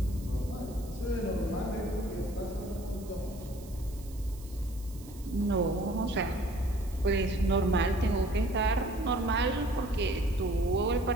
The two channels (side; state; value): right; noise; hiss, 21 dB below the sound